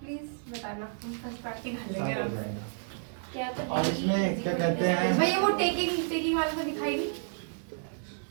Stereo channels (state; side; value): silent; left; 57 dB below the other